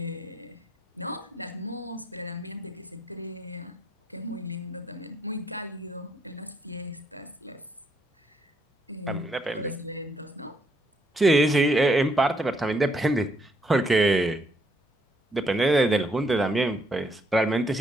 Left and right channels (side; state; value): both; normal; correlation 0.72